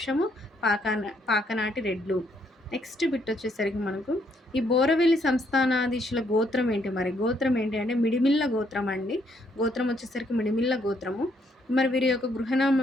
పాకనాటి రెడ్లు. నెక్స్ట్ బిట్ వచ్చేసరికి మనకు ఈ బోరవెల్లి సంస్థానాధీశుల గోత్రం ఏంటి? మరి గోత్రం ఏంటి అంటే మిడిమిల్ల గోత్రం అండి. గోత్రం వచ్చేసరికి మిడిమిల్ల గోత్రము. మరి వీరి యొక్క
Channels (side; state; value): both; normal; correlation 0.71